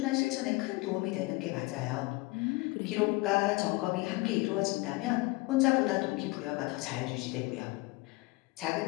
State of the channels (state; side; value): quieter; right; 23.1 dB